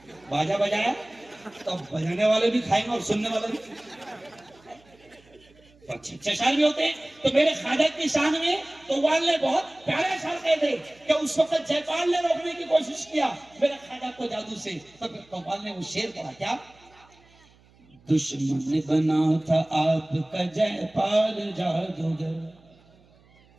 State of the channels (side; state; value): right; noise; hum, 29 dB below the sound